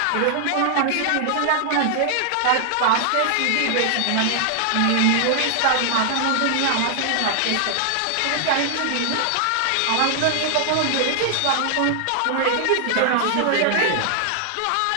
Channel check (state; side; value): different; both; correlation 0.00